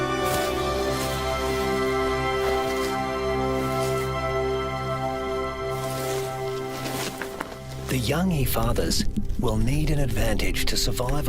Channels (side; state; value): both; identical; correlation 1.00